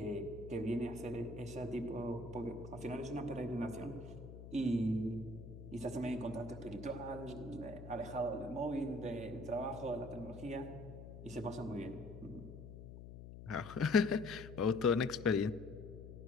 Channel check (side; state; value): left; noise; hum, 12 dB below the sound